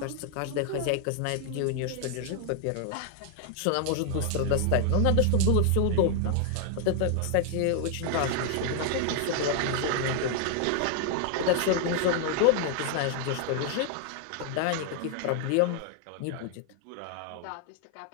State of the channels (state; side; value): different; both; correlation 0.00